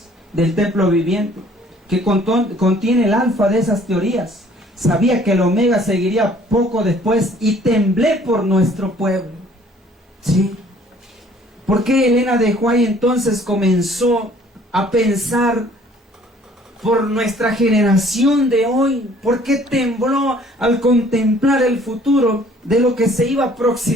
del templo viviente, que contiene el alfa de esas teorías. Sabía que el omega seguiría poco después y temblé por nuestro pueblo. ¿Sí? ¿Por qué Elena de White entonces comenzó a pensar por nuestra generación de hoy? ¿Por qué tembló al contemplar el futuro de lo que se iba a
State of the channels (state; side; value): normal; both; correlation 0.57